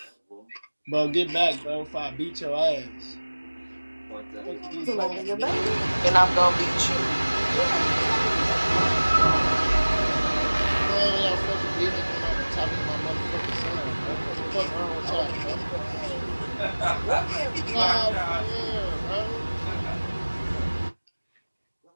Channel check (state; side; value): inverted; both; correlation -1.00